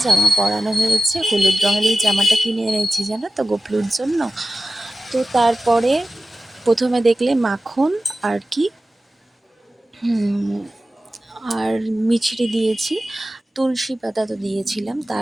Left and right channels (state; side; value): normal; both; correlation 0.95